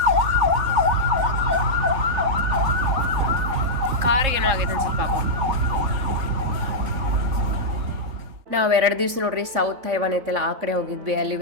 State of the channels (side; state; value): left; late; 3.5 ms